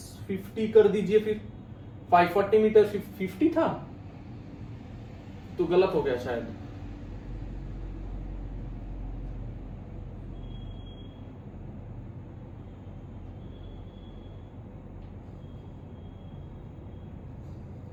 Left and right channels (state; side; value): identical; both; correlation 1.00